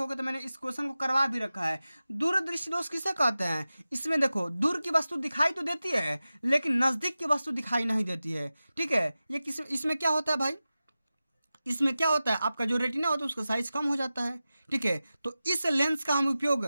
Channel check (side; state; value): both; inverted; correlation -0.95